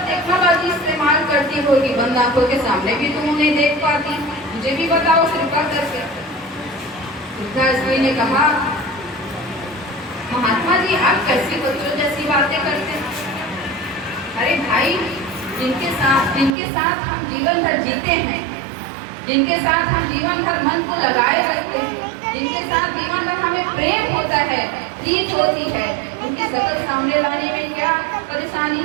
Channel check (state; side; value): drops out; left; at 16.5 s